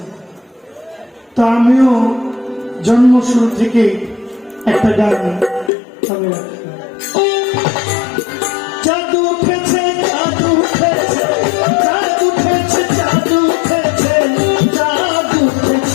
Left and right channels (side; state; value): right; drops out; at 5.7 s